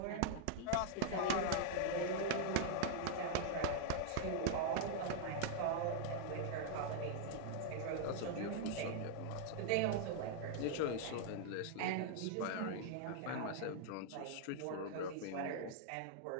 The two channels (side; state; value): both; different; correlation 0.00